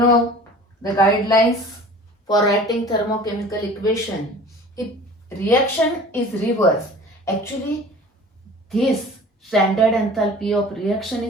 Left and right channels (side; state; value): both; normal; correlation 0.43